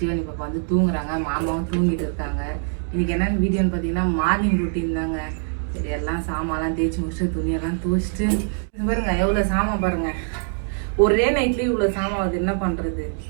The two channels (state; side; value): silent; left; 61 dB below the other